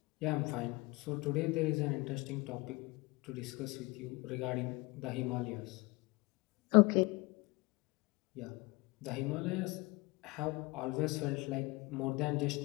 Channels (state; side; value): quieter; right; 24.7 dB